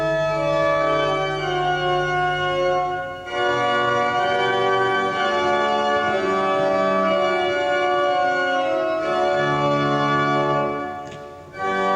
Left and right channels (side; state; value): both; identical; correlation 1.00